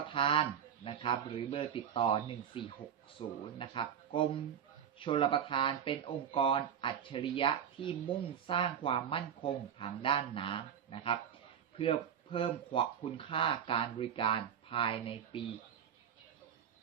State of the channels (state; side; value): quieter; left; 8.6 dB